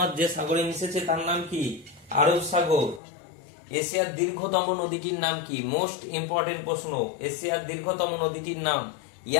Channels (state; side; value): drops out; right; at 3.0 s